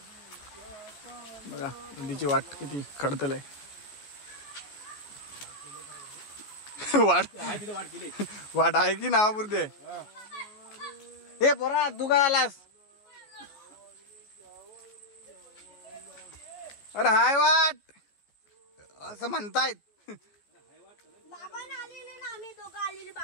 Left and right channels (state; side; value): late; right; 14 ms